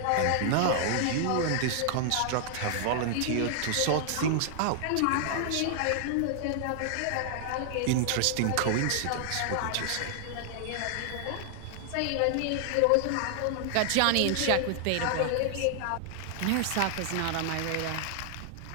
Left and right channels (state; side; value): different; both; correlation 0.00